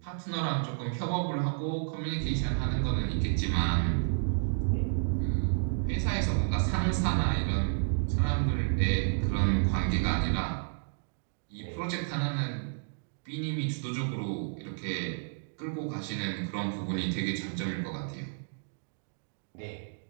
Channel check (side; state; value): left; silent; digital silence